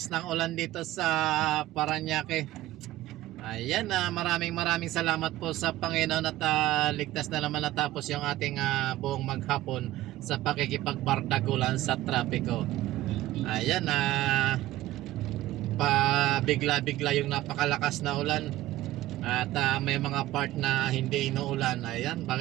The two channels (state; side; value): quieter; left; 15.8 dB